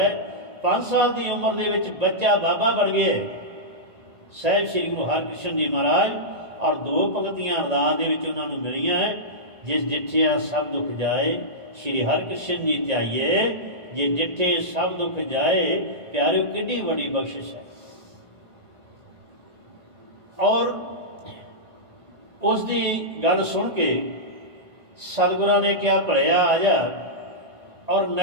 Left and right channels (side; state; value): left; late; 1.9 ms